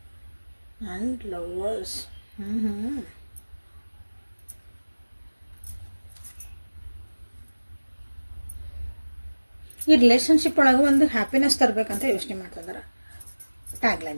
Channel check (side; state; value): both; inverted; correlation -1.00